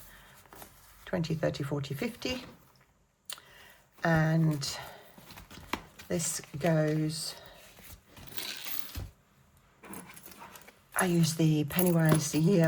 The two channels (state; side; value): identical; both; correlation 1.00